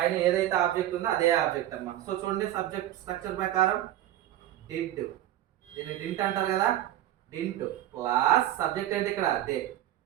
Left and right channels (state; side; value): quieter; left; 13.1 dB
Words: ఏదైతే ఆబ్జెక్ట్ ఉందో అదే ఆబ్జెక్ట్ అమ్మా. సో చూడండి సబ్జెక్ట్ స్ట్రక్చర్ ప్రకారం డిడ్, దీన్ని డింట్ అంటారు కదా, డింట్ ప్లస్ సబ్జెక్ట్ ఏంటి ఇక్కడ దే,